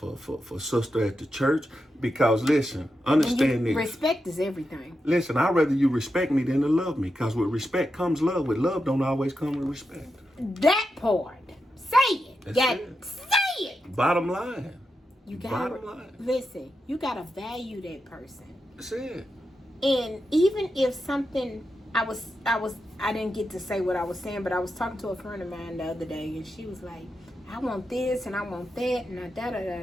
sister at the church. Because listen, understand this. Respect is everything. Listen, I'd rather you respect me than to love me. Because with respect comes love. With love don't always come with respect. That part. Say it. Say it. Bottom line. You gotta listen, you gotta value that person. That's it. And even if something I didn't get to say what I was saying, but I was talking to a friend of mine the other day, and she was like, I want this and I want that and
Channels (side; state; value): both; normal; correlation 0.88